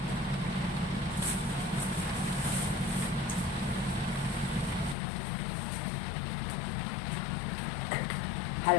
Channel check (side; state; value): right; drops out; at 5.0 s